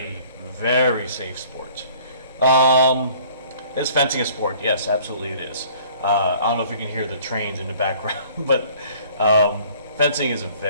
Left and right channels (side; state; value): both; inverted; correlation -0.54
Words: very safe sport. Is fencing a sport? Yes, absolutely it is. I don't know if you can hear the trains in the background, but fencing is a